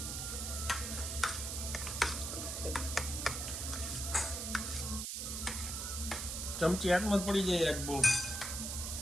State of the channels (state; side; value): noise; right; hiss, 4 dB below the sound